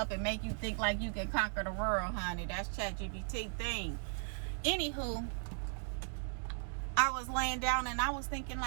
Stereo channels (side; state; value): left; silent; 53 dB below the other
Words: and make you think like you can conquer the world, honey. That's ChatGPT thing. Anywho, I was laying down and I was thinking